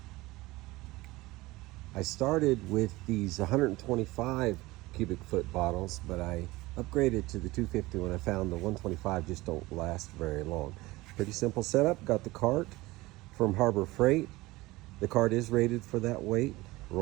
I started with these 125 cubic foot bottles, but I upgraded to the 250 when I found the 125 just don't last very long. Pretty simple setup. Got the cart from Harbor Freight. The cart is rated for that weight.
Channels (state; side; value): quieter; left; 20.2 dB